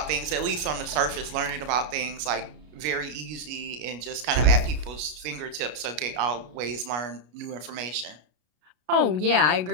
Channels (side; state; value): left; late; 33 ms